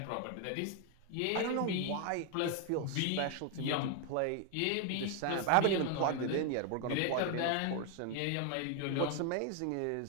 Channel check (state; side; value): different; both; correlation 0.00